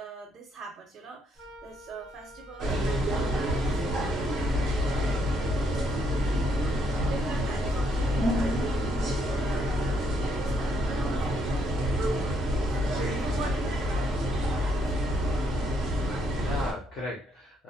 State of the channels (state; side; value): normal; both; correlation 0.73